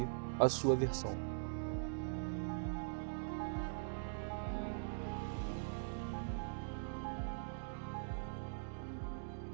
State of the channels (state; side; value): silent; left; digital silence